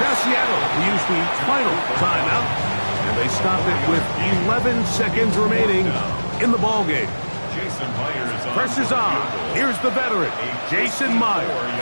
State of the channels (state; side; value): inverted; both; correlation -1.00